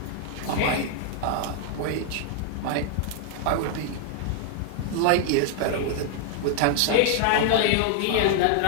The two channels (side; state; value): both; different; correlation 0.00